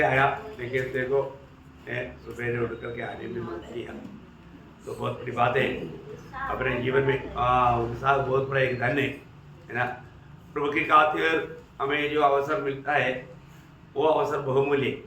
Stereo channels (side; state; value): both; identical; correlation 1.00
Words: आया, लेकिन देखो सुबह उठ करके आने में मन किया, तो बहुत बड़ी बात है अपने जीवन में। उत्साह बहुत बड़ा एक धन है ना। प्रभु की खातिर हमें जो अवसर मिलता है वो अवसर बहुमूल्य